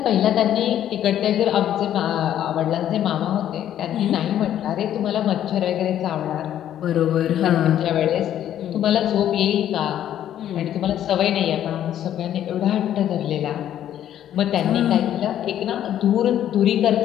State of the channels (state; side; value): quieter; right; 11.0 dB